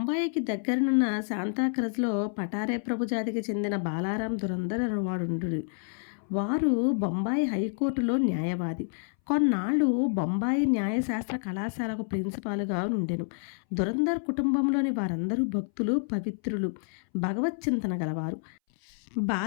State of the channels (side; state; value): right; silent; 59 dB below the other